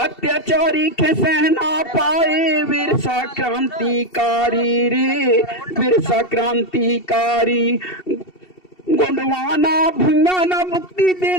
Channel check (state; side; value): late; right; 2.7 ms